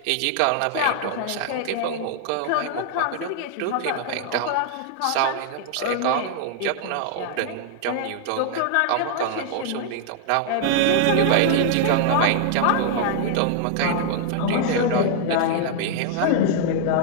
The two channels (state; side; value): different; both; correlation 0.00